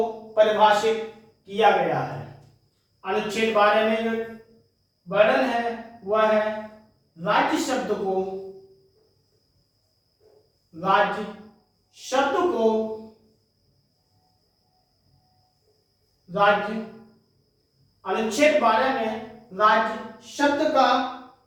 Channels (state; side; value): identical; both; correlation 1.00